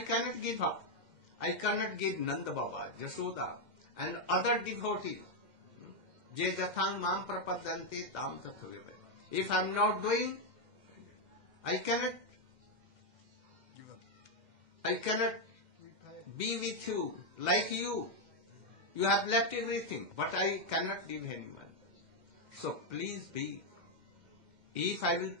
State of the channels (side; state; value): left; late; 2.1 ms